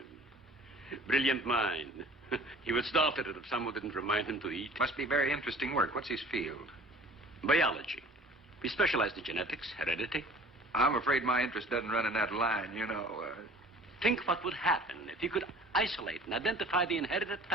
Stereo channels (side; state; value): both; normal; correlation 0.47